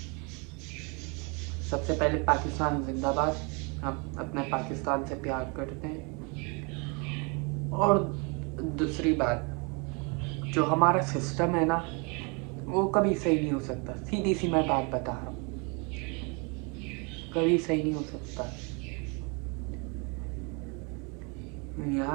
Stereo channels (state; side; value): quieter; left; 32.3 dB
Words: सबसे पहले पाकिस्तान जिंदाबाद, हम अपने पाकिस्तान से प्यार करते हैं। और दूसरी बात, जो हमारा सिस्टम है ना वो कभी सही नहीं हो सकता। सीधी सी मैं बात बता रहा हूँ, कभी सही नहीं हो सकता।